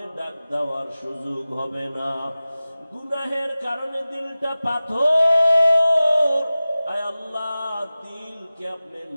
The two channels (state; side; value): inverted; both; correlation -0.96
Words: ডাক দেওয়ার সুযোগ হবে না, গুনাহের কারণে দিলটা পাথর। আয় আল্লাহ, দিলকে আপনি